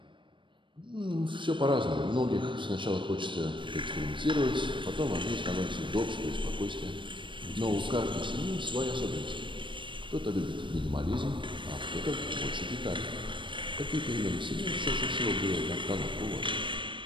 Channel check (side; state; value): left; late; 0.24 ms